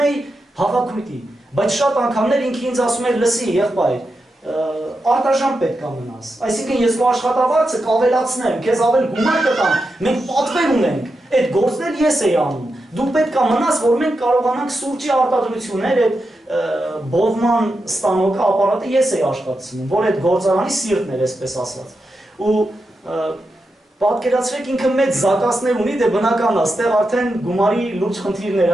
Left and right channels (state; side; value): normal; both; correlation 0.88